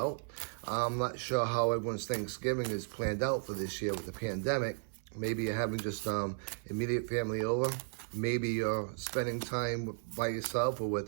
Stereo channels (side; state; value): left; silent; 55 dB below the other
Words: I'm not sure how everyone's Thanksgiving is planned out for this year with the pandemic. Maybe you're having just immediate family over. Maybe you're spending time by yourself or